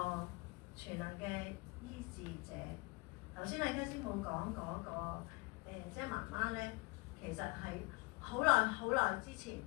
全能嘅醫治者。頭先阿 K 師母講嗰個即係媽媽咧，其實係好耐之前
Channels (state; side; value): quieter; right; 25.7 dB